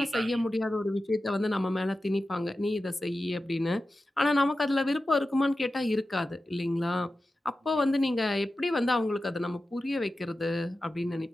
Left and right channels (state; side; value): normal; both; correlation 0.93